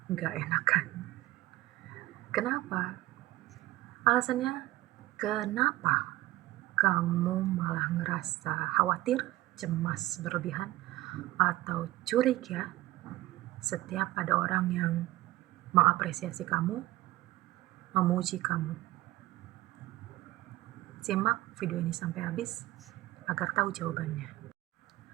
nggak enakan. Kenapa? Alasannya, kenapa kamu malah ngerasa khawatir, cemas berlebihan, atau curiga setiap ada orang yang mengapresiasi kamu, memuji kamu? Simak video ini sampai habis agar tahu jawabannya.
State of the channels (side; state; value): left; quieter; 17.3 dB